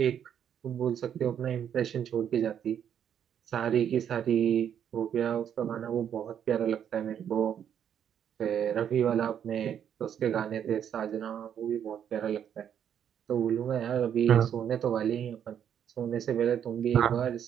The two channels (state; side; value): quieter; left; 9.0 dB